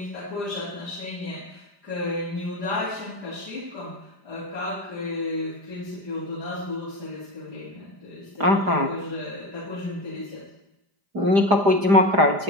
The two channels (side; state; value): left; late; 5.0 ms